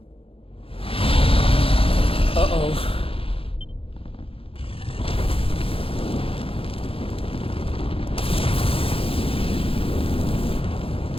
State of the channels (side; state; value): right; late; 0.27 ms